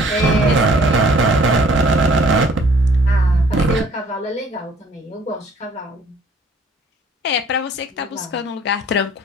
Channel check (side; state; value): both; normal; correlation 0.57